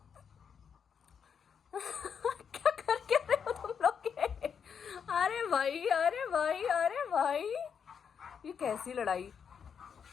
क्या करके रहे हो तुम लोग के? अरे भाई, अरे भाई, अरे भाई, ये कैसी लड़ाई?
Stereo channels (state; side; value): quieter; right; 7.0 dB